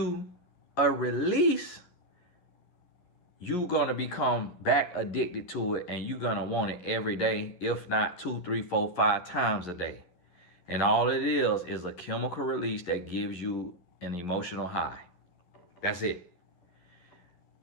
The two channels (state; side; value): late; right; 11 ms